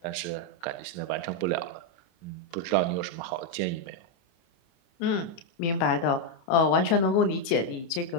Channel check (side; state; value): right; late; 30 ms